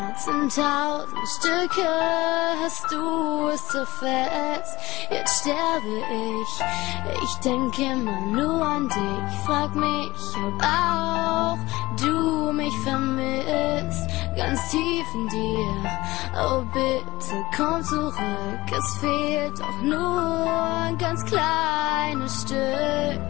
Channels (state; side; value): quieter; right; 19.6 dB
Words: in 1000 Stücke, hast du es so fest, jetzt sterbe ich. Ich denke immer nur an dich, frag mich, ob auch du mich vermisst, ganz tief in dir. Oh bitte komm zurück, es fehlt doch nur ein ganz kleines Stück.